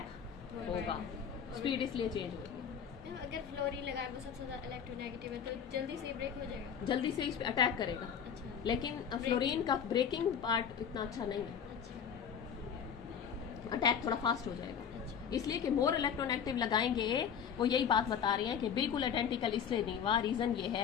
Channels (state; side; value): quieter; right; 7.7 dB